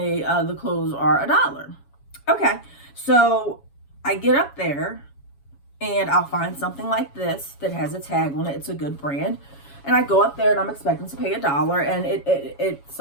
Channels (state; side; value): late; right; 7.2 ms